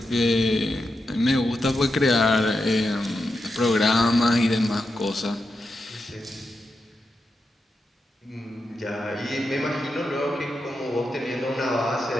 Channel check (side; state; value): both; normal; correlation 0.87